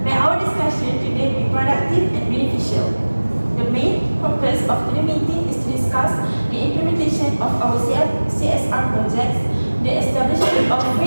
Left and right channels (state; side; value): inverted; both; correlation -1.00